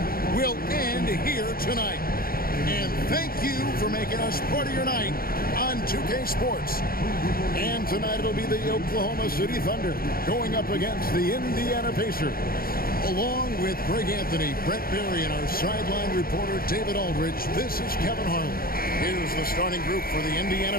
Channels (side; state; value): right; late; 0.43 ms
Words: will end here tonight. And thank you for making us part of your night on 2K Sports. And tonight it'll be the Oklahoma City Thunder going up against the Indiana Pacers. Along with Greg Anthony, Brett Berry, and our sideline reporter David Aldridge, this is Kevin Harlan. Here's the starting group for the Indiana